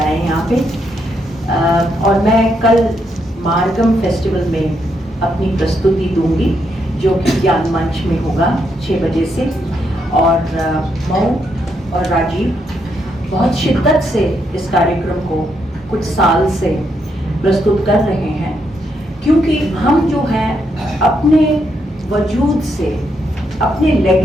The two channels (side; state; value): both; normal; correlation 0.78